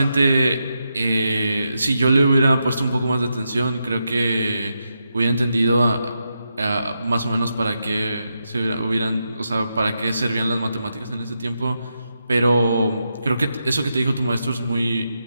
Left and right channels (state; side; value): inverted; both; correlation -0.85